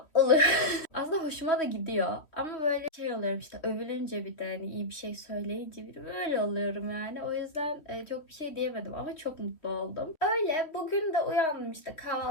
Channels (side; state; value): right; late; 3.1 ms